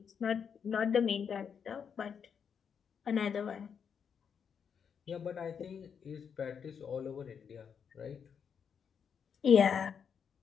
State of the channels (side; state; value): right; quieter; 7.0 dB